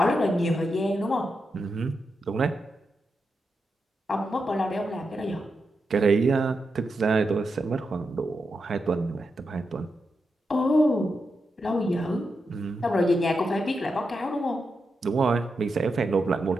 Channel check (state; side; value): normal; both; correlation 0.86